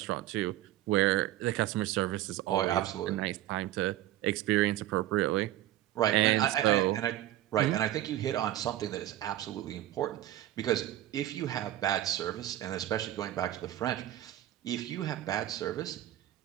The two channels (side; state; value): left; quieter; 13.6 dB